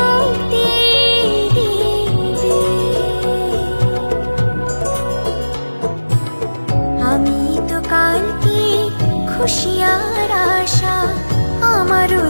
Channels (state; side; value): inverted; both; correlation -1.00